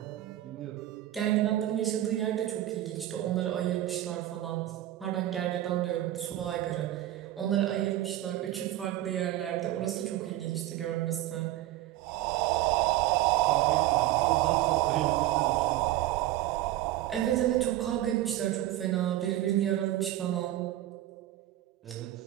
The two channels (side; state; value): left; quieter; 14.4 dB